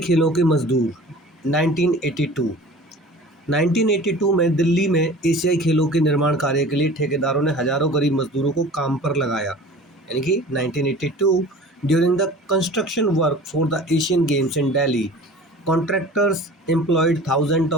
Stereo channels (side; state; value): both; normal; correlation 0.42